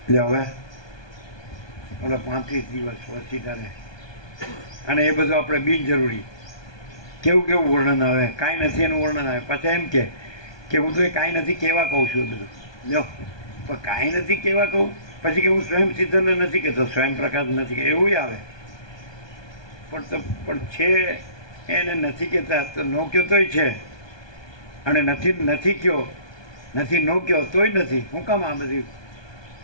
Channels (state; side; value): late; right; 1.2 ms